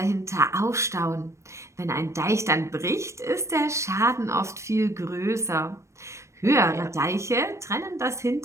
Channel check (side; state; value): left; late; 0.14 ms